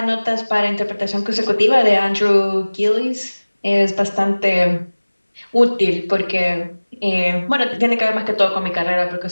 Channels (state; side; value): inverted; both; correlation -1.00